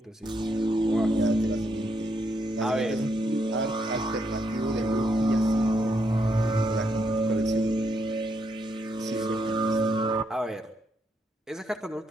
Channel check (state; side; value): normal; both; correlation 0.77